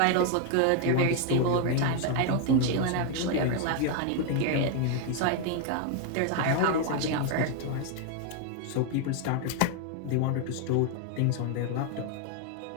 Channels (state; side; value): different; both; correlation 0.01